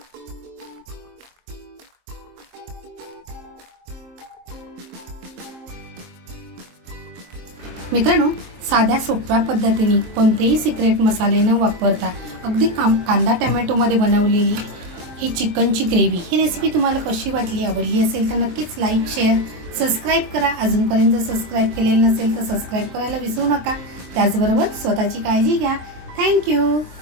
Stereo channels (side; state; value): left; late; 23 ms